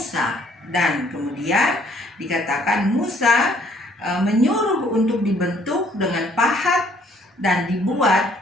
dan kemudian dikatakan Musa menyuruh untuk dibentuk dengan pahat dan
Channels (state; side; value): normal; both; correlation 0.63